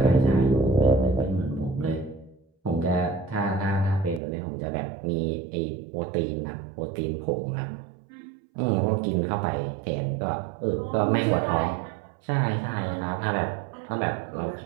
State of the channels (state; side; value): drops out; left; at 4.2 s